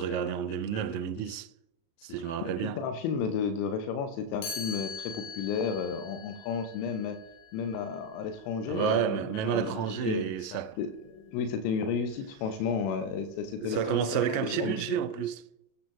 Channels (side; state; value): right; late; 37 ms